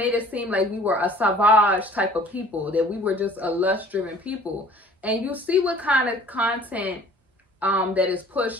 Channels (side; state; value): both; normal; correlation 0.51